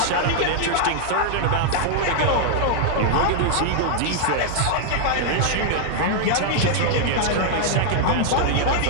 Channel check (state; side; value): different; both; correlation 0.00